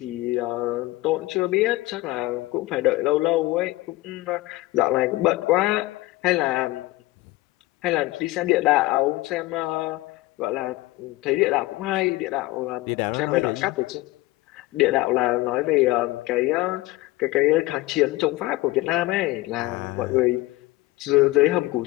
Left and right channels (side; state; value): right; quieter; 19.2 dB